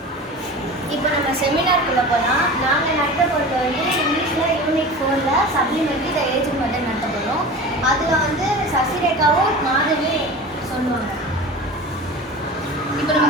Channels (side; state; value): both; normal; correlation 0.34